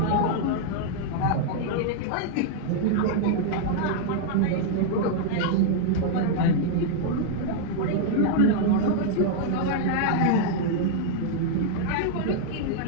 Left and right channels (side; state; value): both; different; correlation 0.00